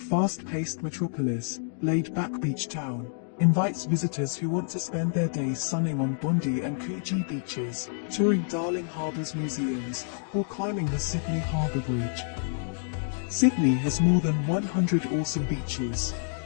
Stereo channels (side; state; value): right; silent; digital silence